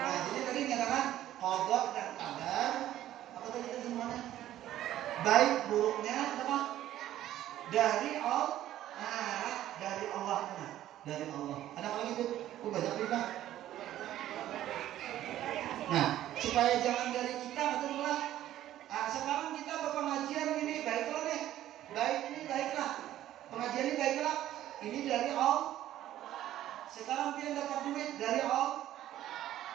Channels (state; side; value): quieter; left; 13.0 dB